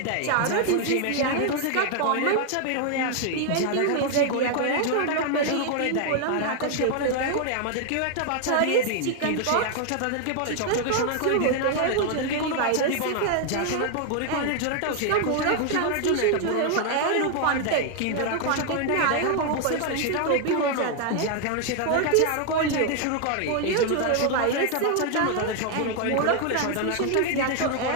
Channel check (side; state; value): both; different; correlation 0.00